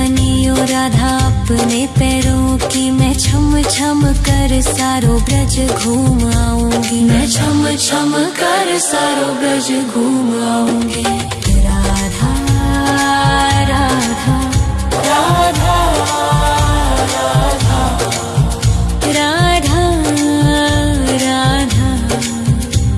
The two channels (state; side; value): identical; both; correlation 1.00